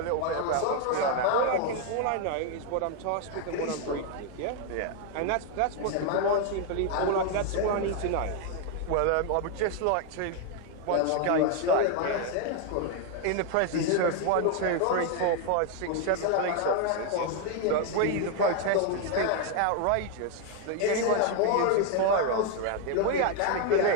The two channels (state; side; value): different; both; correlation 0.01